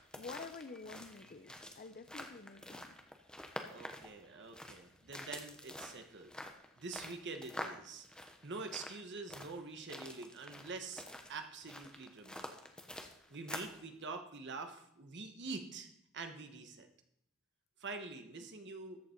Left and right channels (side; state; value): both; normal; correlation 0.38